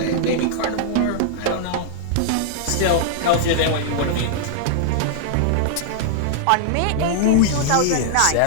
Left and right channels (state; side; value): different; both; correlation -0.01